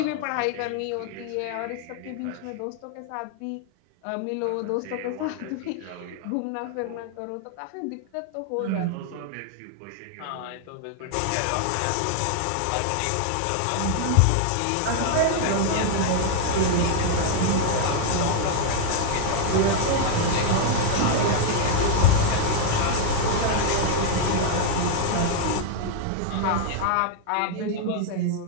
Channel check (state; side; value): different; both; correlation 0.00